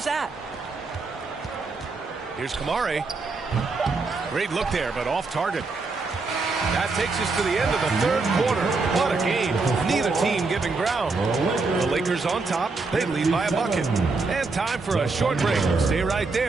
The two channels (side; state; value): left; quieter; 3.9 dB